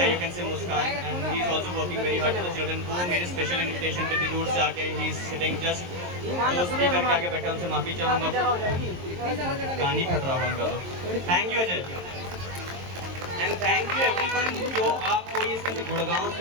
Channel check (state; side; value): late; left; 23 ms